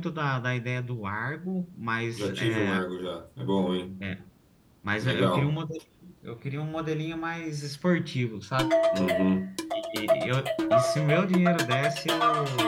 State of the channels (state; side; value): identical; both; correlation 1.00